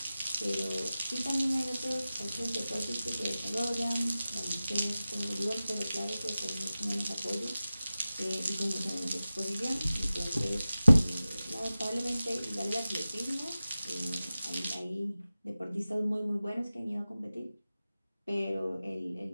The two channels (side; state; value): both; inverted; correlation -0.96